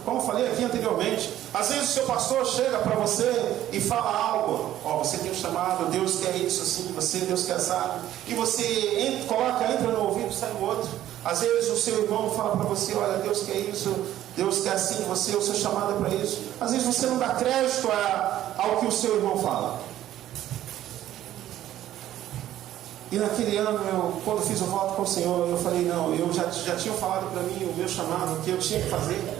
como falei aqui anteriormente. Às vezes o seu pastor chega para você e fala algo, você tem um chamado, Deus quer isso assim, Deus quer assado, e você entra no ouvido, sai no outro. Às vezes o seu irmão fala para você, olha, Deus quer isso, Deus quer assim, o seu chamado é para isso. Às vezes você não dá crédito ao que o seu irmão fala. E naquele ano, quando fiz o voto com o Senhor, eu falei, não, eu já tinha falado para mim o meu chamado, o que eu tinha que fazer.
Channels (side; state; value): left; quieter; 12.8 dB